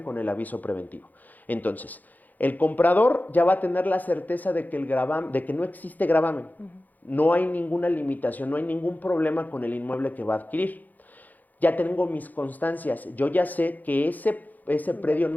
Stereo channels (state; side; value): late; right; 0.082 ms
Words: con el aviso preventivo. Entonces, el comprador ya va a tener la certeza de que, de que no existe gravamen. No hay ninguna limitación, no hay ningún problema con el inmueble que va a adquirir. Ya tengo mis constancias, yo ya sé que ese predio